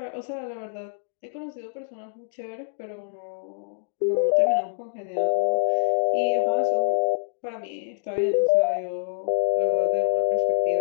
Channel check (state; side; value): silent; right; digital silence